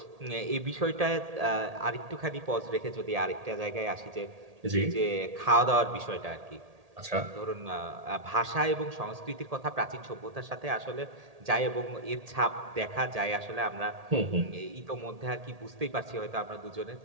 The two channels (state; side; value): late; left; 1.8 ms